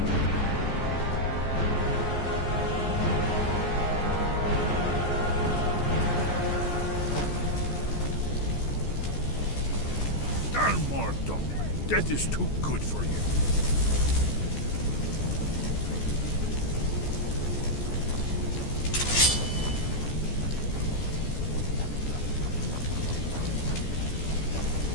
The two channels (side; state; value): right; late; 14 ms